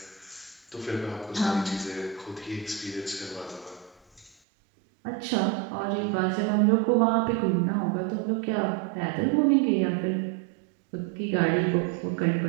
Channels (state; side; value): drops out; left; at 4.4 s